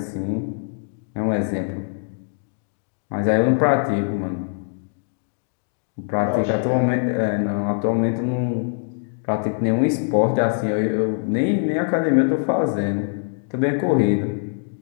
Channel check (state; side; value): silent; right; digital silence